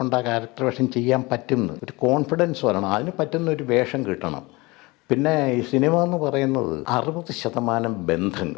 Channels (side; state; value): right; quieter; 23.8 dB